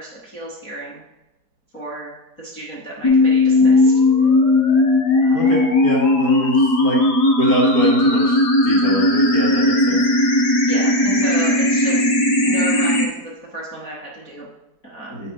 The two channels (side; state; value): right; late; 4.9 ms